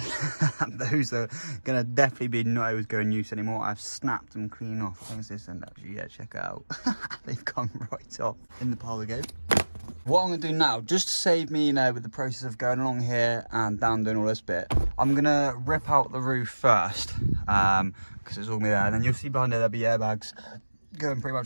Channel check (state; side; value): inverted; both; correlation -1.00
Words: Those are going to definitely be not able to go in use anymore. I've snapped them clean off. Thanks this end actually, yeah, check it out. They've come right off. In the pile they go. What I'm going to do now, just to save me, you know, with the process of going along here and down doing all this bit, I'm going to rip out the roof first, because it's all me there. And then you'll see behind there, there'll be airbags going pretty